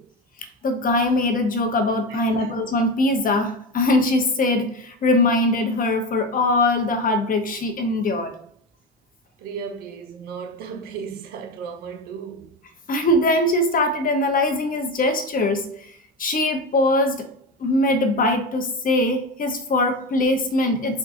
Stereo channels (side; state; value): both; normal; correlation 0.21